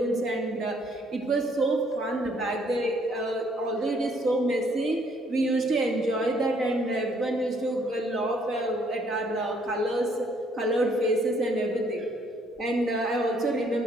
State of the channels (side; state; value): both; normal; correlation 0.66